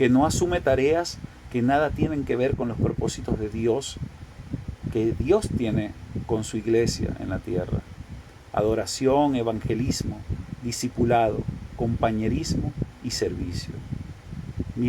no asume tareas que nada tienen que ver con los propósitos de Dios, que Dios tiene con su iglesia en la tierra. Adoración, evangelismo, discipulado, compañerismo y servicio.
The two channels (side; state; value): both; identical; correlation 1.00